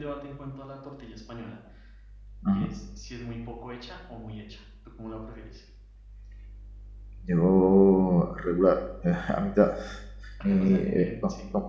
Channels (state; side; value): identical; both; correlation 1.00